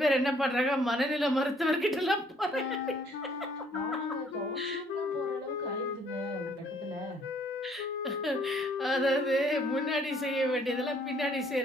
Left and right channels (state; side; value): normal; both; correlation 0.63